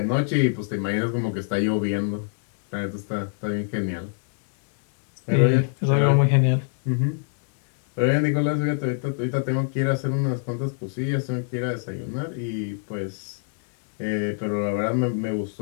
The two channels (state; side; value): silent; right; digital silence